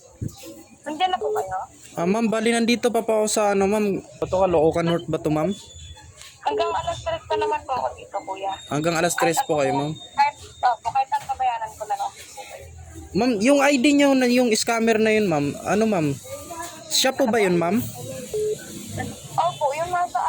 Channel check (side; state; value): both; identical; correlation 1.00